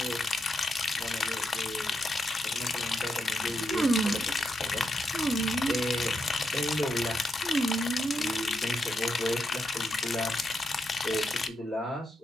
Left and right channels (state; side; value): normal; both; correlation 0.83